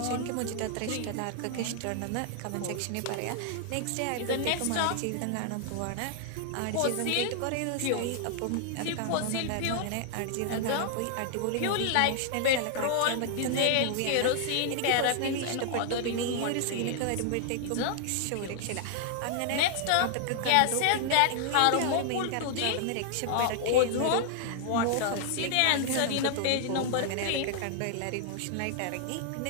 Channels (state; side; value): different; both; correlation 0.00